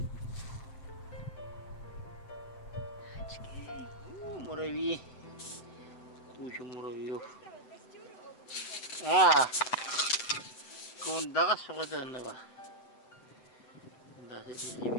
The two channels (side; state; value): right; late; 7.8 ms